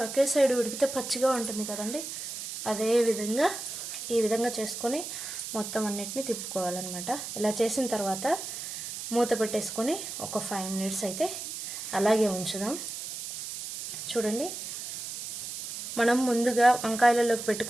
ఒకే సైడ్ ఉడికితే పచ్చిగా ఉంటుంది కదండి. అదే విధంగా ఈ విధంగా చేసుకొని మొత్తం అన్నిటిని తిప్పుకోవాలన్నమాట. ఇలా చేసిన తర్వాత మూత పెట్టేసుకొని ఒక 5 మినిట్స్ అయితే అలాగే ఉంచుదాం. చూడండి, మనం ముందుగా వంకాయలలోకి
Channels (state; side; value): noise; right; hiss, 7 dB below the sound